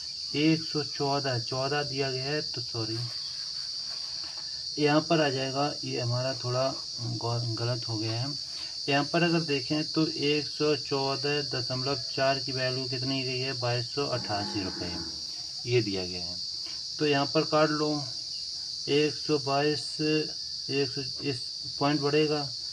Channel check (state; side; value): identical; both; correlation 1.00